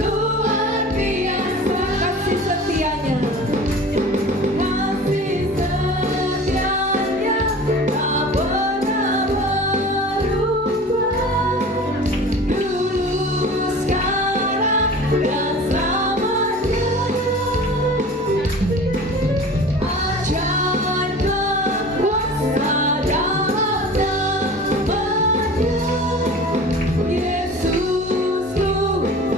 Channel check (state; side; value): normal; both; correlation 0.39